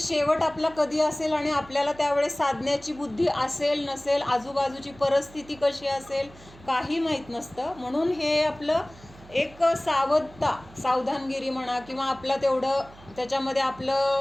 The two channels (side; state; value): right; noise; hum, 22 dB below the sound